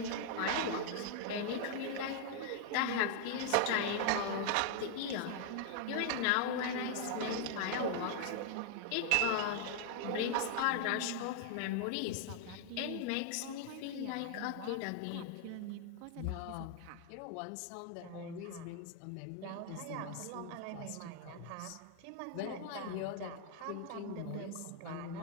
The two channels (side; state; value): both; different; correlation 0.00